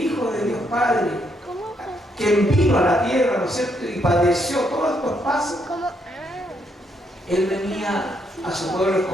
de Dios Padre, quien vino a la tierra, ¿no es cierto?, y padeció todos estos pasos, Él venía a su pueblo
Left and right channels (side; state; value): both; normal; correlation 0.75